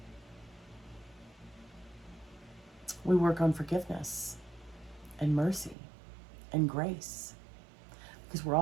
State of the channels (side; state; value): left; drops out; at 5.8 s